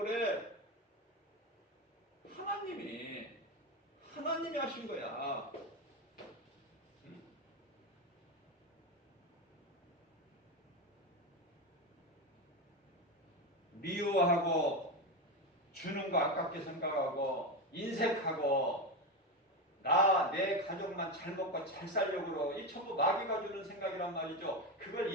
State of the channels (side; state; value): both; normal; correlation 0.16